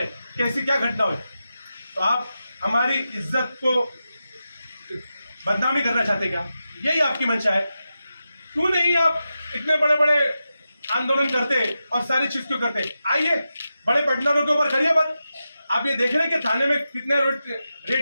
हैं कि ऐसी क्या घटना हुई। तो आप हमारी इज्जत को बदनामी करना चाहते क्या? यही आपकी मंशा है? क्यों नहीं आप इतने बड़े बड़े आंदोलन करते और सारी चीज क्यों करते? आइए, बड़े पेडलरों के ऊपर करिए बात। आप ये देख रहे हैं कि थाने में कितने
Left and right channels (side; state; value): both; inverted; correlation -0.90